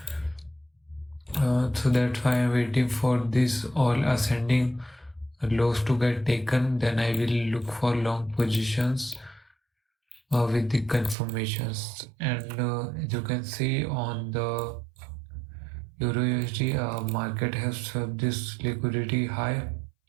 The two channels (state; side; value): drops out; left; at 11.2 s